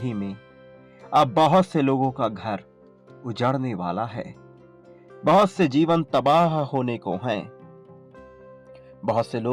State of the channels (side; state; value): both; identical; correlation 1.00